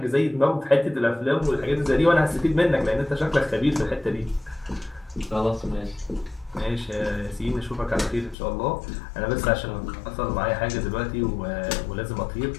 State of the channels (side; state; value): right; drops out; at 8.3 s